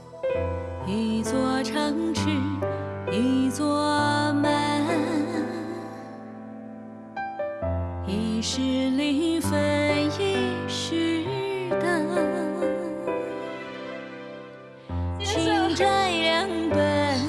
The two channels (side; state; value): both; identical; correlation 1.00